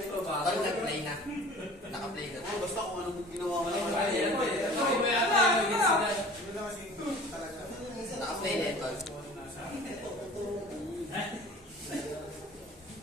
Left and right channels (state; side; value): normal; both; correlation 0.44